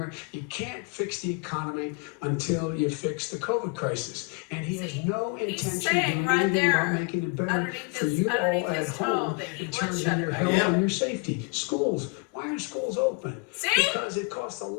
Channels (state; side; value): quieter; right; 31.5 dB